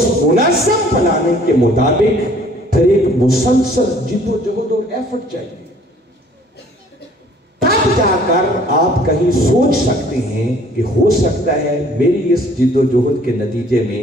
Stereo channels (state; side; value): normal; both; correlation 0.56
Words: منظم پلاننگ کے مطابق پھر ایک مسلسل جد و جہد اور ایفرٹ چاہیے، تب جا کر آپ کہیں سوچ سکتے ہیں کہ ہو سکتا ہے میری اس جد و جہد کے نتیجے میں